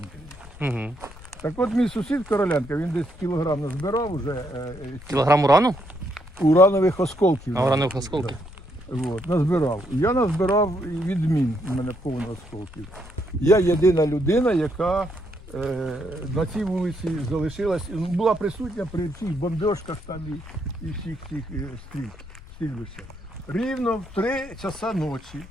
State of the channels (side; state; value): left; noise; rumble, 18 dB below the sound